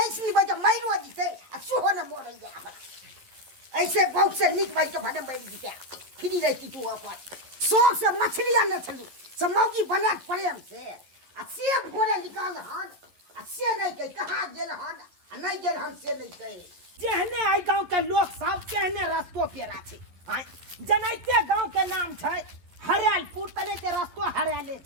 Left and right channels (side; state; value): left; late; 11 ms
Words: ऐसनी बजे मैरो जीते आ सुहो न मोरैया हमरा ऐसे बहुत से निक भाई के भडम बैठ जीते फ्री रहती तू अपन शौक से मछली आने चलू सब मौगी बना प्रेम से भोरे निकाल हन आ से नहीं कह कहाँ गेल हन आ नहीं गेल हन से नहीं कहे जेहने आई गांव के लोग सब कहने रस्तो पेरा छै जनैते गांव के नाम छै हरियालपुर तने ते रस्तो हरियाले